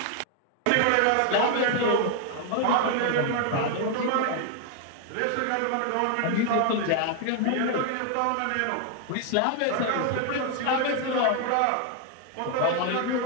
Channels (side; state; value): both; different; correlation 0.00